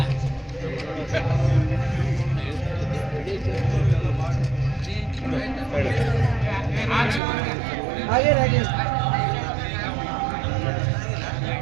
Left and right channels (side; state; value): left; drops out; at 7.2 s